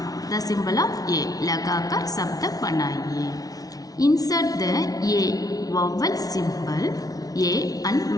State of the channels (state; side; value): late; right; 0.18 ms